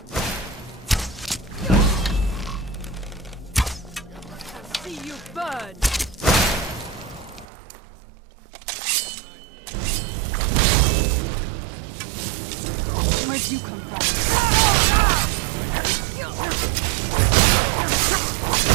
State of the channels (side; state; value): left; drops out; at 7.5 s